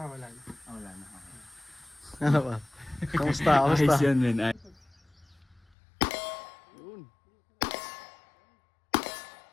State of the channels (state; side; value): drops out; right; at 5.6 s